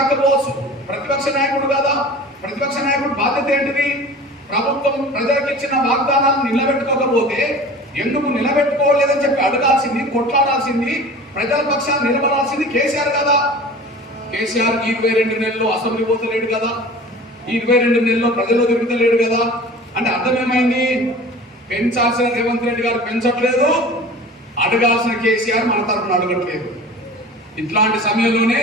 ప్రతిపక్ష నాయకుడు కదా. ప్రతిపక్ష నాయకుడు బాధ్యత ఏంటిది? ప్రభుత్వం ప్రజలకు ఇచ్చిన వాగ్దానాలను నిలబెట్టుకోకపోతే ఎందుకు నిలబెట్టుకోలేదని చెప్పి అడగాల్సింది, కొట్లాడాల్సింది, ప్రజల పక్షాన్ని నిలబడాల్సింది కేసీఆర్ కదా. కేసీఆర్ 22 నెలల్లో అసెంబ్లీ పోతలేడు కదా, 22 నెలల్లో ప్రజల్లో తిరుగుతలేడు కదా. అంటే అర్థం ఏమైంది? పెంచాల్సిన రేవంత్ రెడ్డి గారు పెంచట్లేదు, అడగాల్సిన కేసీఆర్ మన తరఫున అడగట్లేదు. ఇట్లాంటి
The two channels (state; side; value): normal; both; correlation 0.40